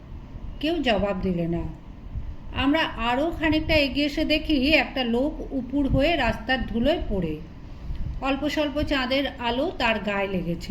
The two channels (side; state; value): both; identical; correlation 1.00